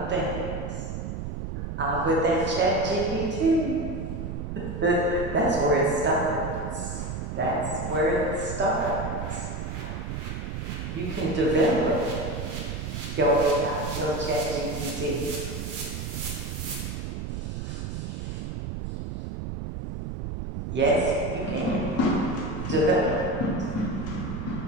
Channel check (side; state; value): right; noise; rumble, 5 dB below the sound